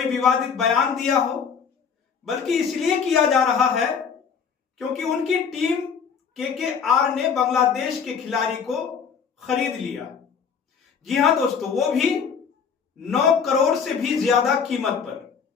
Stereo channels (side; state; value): right; quieter; 6.6 dB